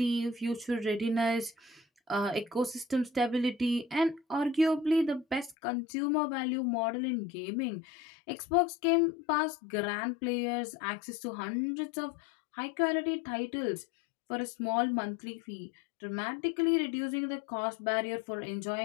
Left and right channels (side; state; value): right; drops out; at 5.6 s